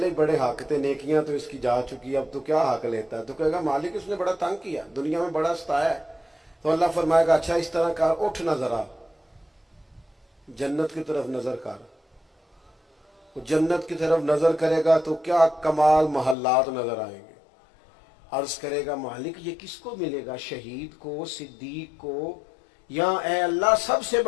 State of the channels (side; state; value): right; drops out; at 16.4 s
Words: ही बड़े हक थे, नेकियां तो इसकी जा चुकी, अब तो क्या हक लेता है? तो कहेगा मालिक उसने बड़ा तंग किया, दुनिया में बड़ा सताया है। तो अल्लाह फरमाएगा अच्छा इस तरह कर, उठ ना जरा जन्नत की तरफ नजर कर। वो जन्नत की तरफ नजर करेगा तो क्या कमाल महल्लात नजर आएंगे। अर्ज करेगा मालिक ये किसको मिलेगा, शहीद को, सिद्दीक को, या ए अल्लाह सबसे